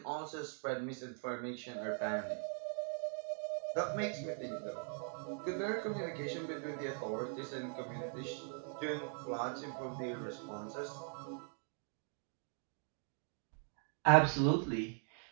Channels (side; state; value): left; silent; 50 dB below the other